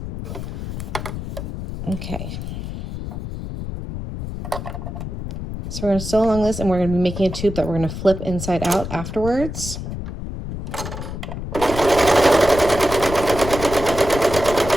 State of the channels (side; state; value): left; noise; rumble, 7 dB below the sound